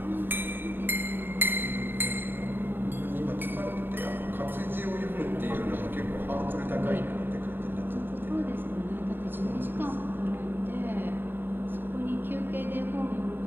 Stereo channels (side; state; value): left; late; 0.097 ms